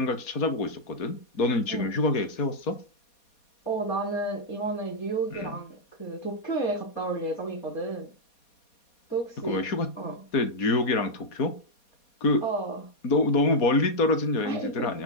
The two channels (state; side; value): late; right; 4.2 ms